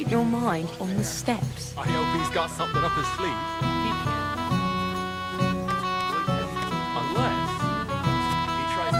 your mind on the steps. I hope he's got something up his sleeve. Unless he tries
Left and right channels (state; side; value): identical; both; correlation 1.00